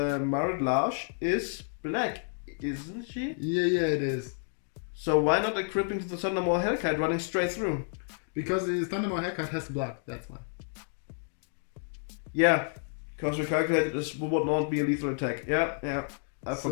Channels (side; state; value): right; silent; 58 dB below the other